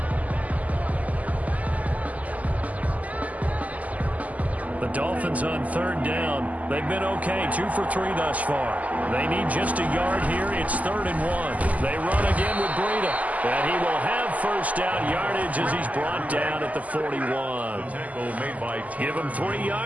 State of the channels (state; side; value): late; left; 0.075 ms